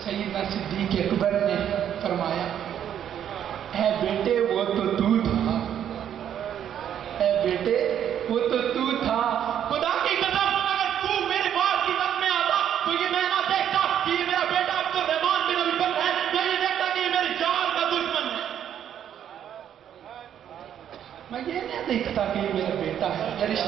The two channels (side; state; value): left; quieter; 9.7 dB